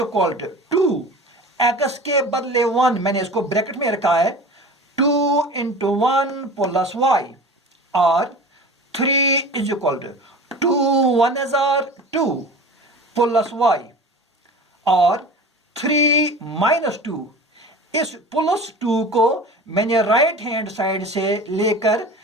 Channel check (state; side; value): normal; both; correlation 0.36